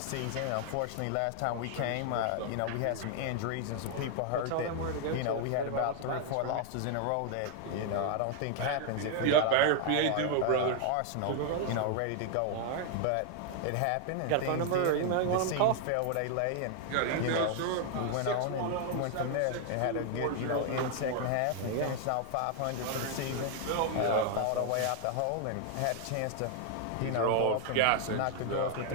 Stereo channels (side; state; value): both; different; correlation 0.00